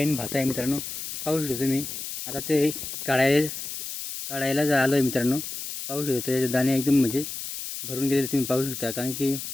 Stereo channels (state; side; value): noise; left; hiss, 7 dB below the sound